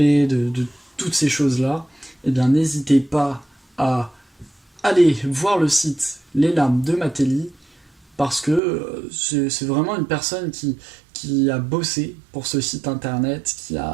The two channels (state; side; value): drops out; left; at 8.6 s